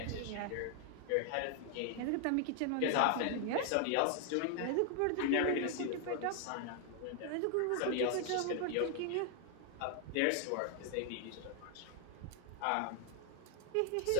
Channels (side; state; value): both; different; correlation 0.00